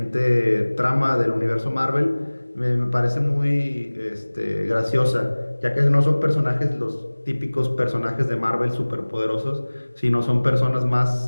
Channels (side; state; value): both; inverted; correlation -1.00